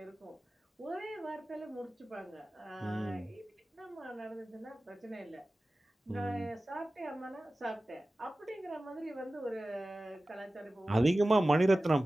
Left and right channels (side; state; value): both; normal; correlation 0.96